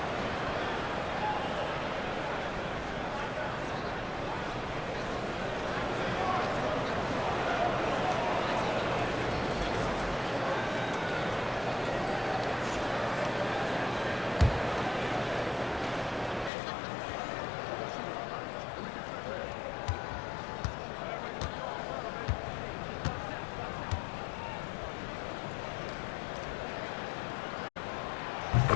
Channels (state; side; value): drops out; right; at 16.5 s